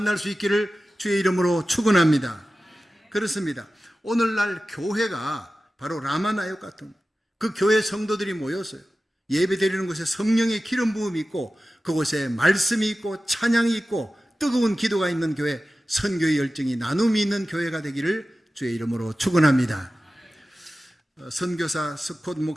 수 있기를 주의 이름으로 축원합니다. 그렇습니다. 오늘날 교회가 바로 라마나요 같은 그 교회 성도들이 모였어요. 예배 드리는 곳에 성령의 기름 부음이 있고 그곳에 말씀이 있고 찬양이 있고 뜨거운 기도가 있는 교회, 선교의 열정이 나눔이 있는 교회가 되기를 주의 이름으로 축원합니다. 선교사 스콧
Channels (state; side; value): normal; both; correlation 0.95